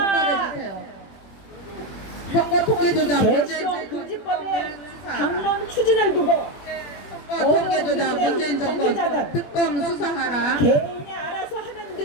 주세요. 선거 통계조작 문재인 금지법의 당론 추진을 두고 선거 통계조작 문재인 정권 특검 수사하라. 개인이 알아서 하면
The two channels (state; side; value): late; right; 21 ms